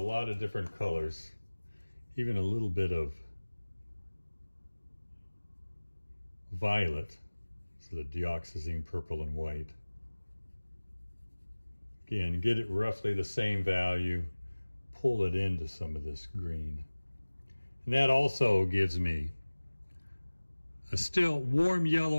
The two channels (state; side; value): inverted; both; correlation -1.00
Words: of different colors, even a little bit of violet, so the dioxazine purple and white. Again, get it roughly the same value, pull it into some of this green. And that also gives me a still warm